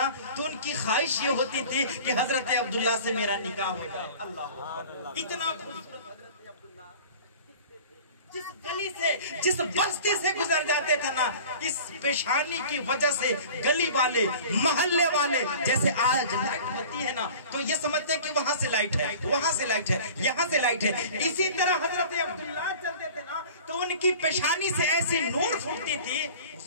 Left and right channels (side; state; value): both; inverted; correlation -0.42